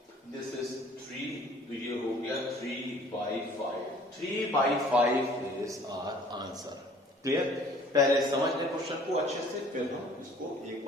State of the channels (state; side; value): normal; both; correlation 0.53